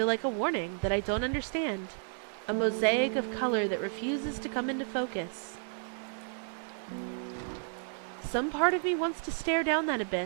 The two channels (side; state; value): left; silent; 56 dB below the other